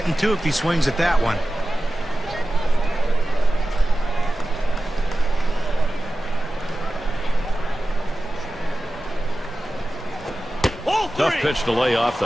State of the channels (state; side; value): normal; both; correlation 0.95